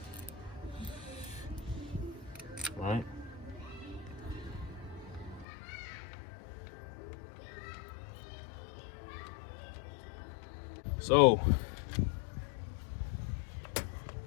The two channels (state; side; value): drops out; right; at 5.5 s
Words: All right. So,